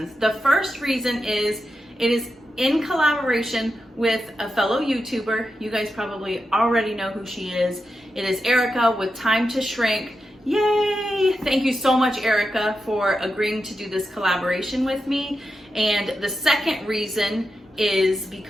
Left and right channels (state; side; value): normal; both; correlation 0.88